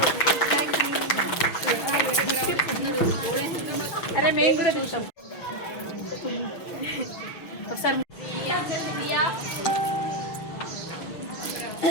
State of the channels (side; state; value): right; late; 6.6 ms